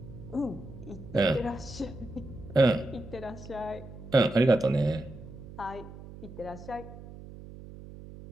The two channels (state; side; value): noise; right; hum, 15 dB below the sound